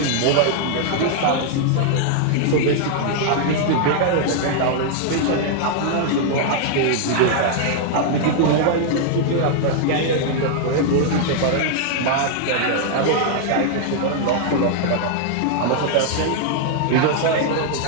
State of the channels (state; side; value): different; both; correlation 0.00